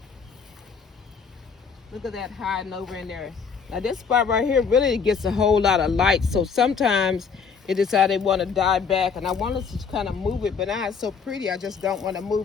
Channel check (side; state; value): right; quieter; 5.8 dB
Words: Look at that hiding over in there. Now this spot right here really gets a whole lot of light, so sometimes it decides they want to die back, and I wanted to kind of move it, but now it's so pretty I just don't want to